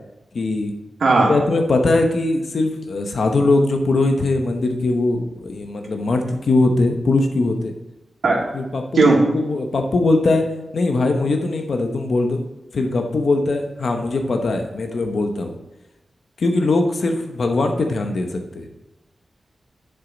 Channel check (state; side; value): normal; both; correlation 0.88